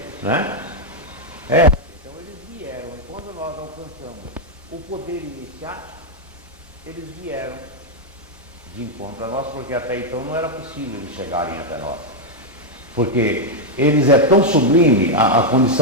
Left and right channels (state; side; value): normal; both; correlation 0.00